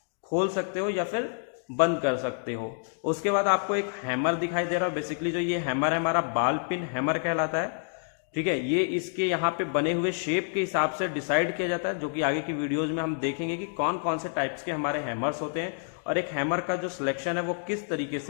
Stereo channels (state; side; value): silent; right; digital silence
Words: खोल सकते हो या फिर बंद कर सकते हो। उसके बाद आपको एक हैमर दिखाई दे रहा है। बेसिकली जो ये हैमर है हमारा बाल पिन हैमर कहलाता है। ठीक है, ये इसके यहाँ पे बने हुए शेप के हिसाब से डिसाइड किया जाता है, जो कि आगे की वीडियोज में हम देखेंगे कि कौन कौन से टाइप्स के हमारे हैमर्स होते हैं और एक हैमर का जो सिलेक्शन है वो किस तरीके